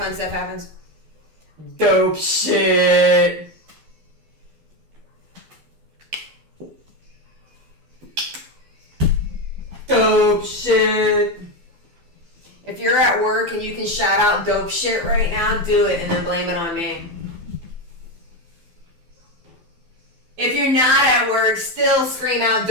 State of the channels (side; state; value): left; late; 12 ms